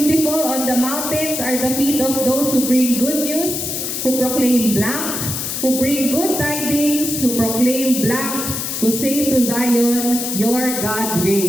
on the mountains are the feet of those who bring good news, who proclaim blank, who bring good tidings, who proclaim blank, who say to Zion, your God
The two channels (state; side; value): noise; left; hiss, 3 dB below the sound